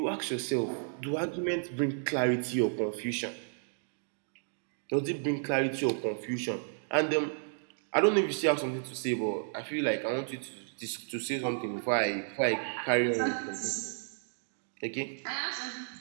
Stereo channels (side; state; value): left; silent; digital silence